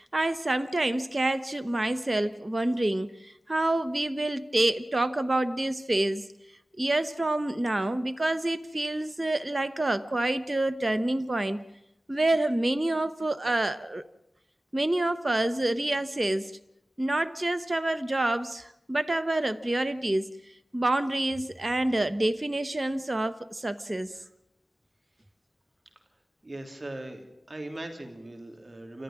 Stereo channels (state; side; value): normal; both; correlation 0.97